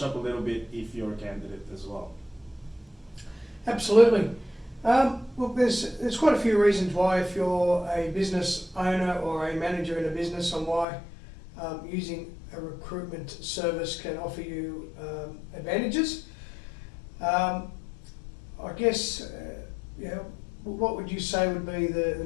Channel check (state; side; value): drops out; right; at 10.9 s